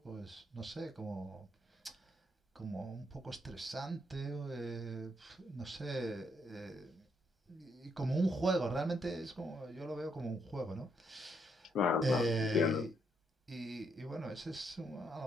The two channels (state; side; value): normal; both; correlation 0.75